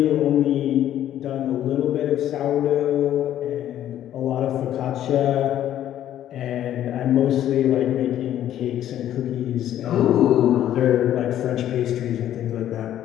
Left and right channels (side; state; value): right; quieter; 11.6 dB